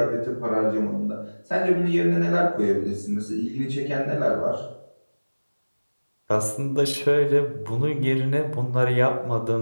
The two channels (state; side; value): inverted; both; correlation -1.00